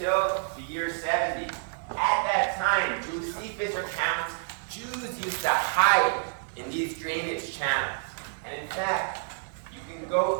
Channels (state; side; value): silent; left; 58 dB below the other